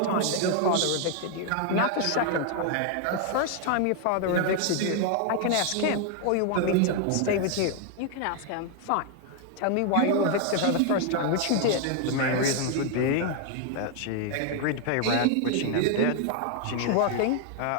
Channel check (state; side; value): different; both; correlation 0.00